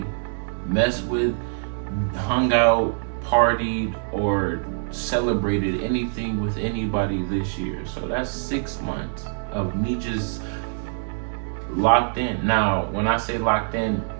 messed with, hung out, partied, or celebrated anything with anybody this year. So that's 6 months of me just locked in. Now, when I say locked in,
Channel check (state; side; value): silent; left; digital silence